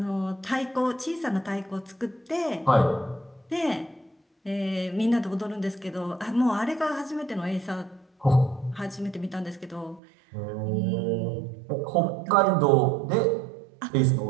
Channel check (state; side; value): drops out; left; at 10.0 s